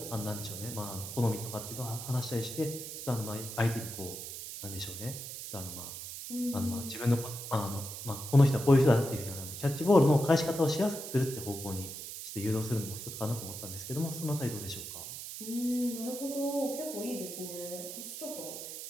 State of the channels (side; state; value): right; noise; hiss, 8 dB below the sound